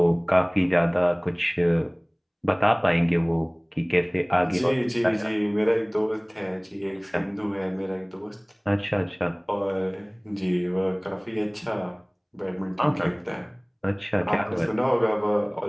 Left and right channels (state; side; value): identical; both; correlation 1.00